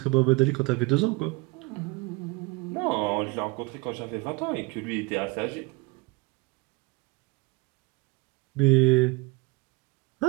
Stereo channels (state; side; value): quieter; left; 25.8 dB